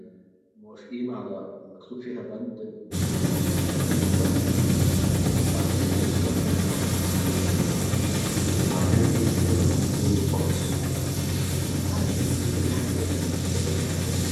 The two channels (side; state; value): both; identical; correlation 1.00